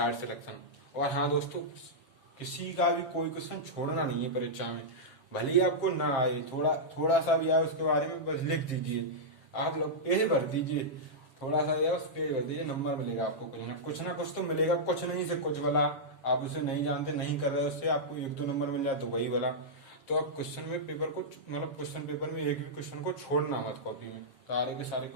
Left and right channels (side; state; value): right; late; 7.1 ms